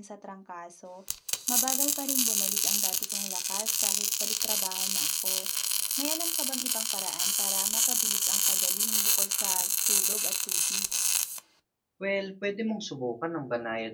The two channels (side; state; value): both; identical; correlation 1.00